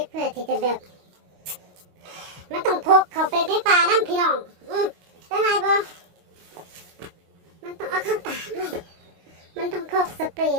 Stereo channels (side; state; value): left; late; 25 ms